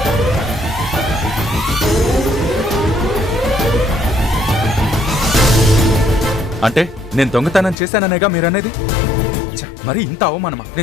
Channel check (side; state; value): right; drops out; at 7.8 s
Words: అంటే నేను దొంగతనం చేశాననేగా మీరనేది? మరి ఇంత అవమానమా?